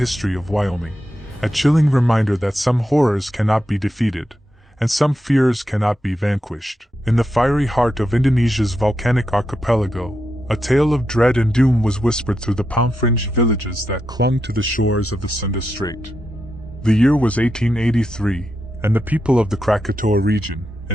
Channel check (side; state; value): both; normal; correlation 0.86